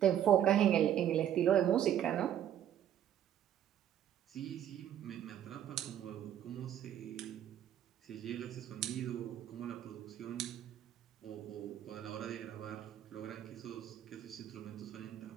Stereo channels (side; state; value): left; quieter; 10.6 dB